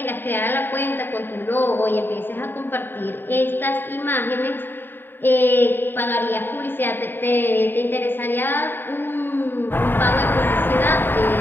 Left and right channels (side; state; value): right; late; 0.097 ms